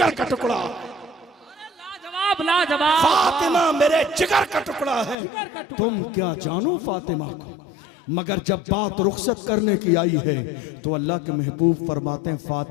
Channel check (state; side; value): drops out; right; at 5.2 s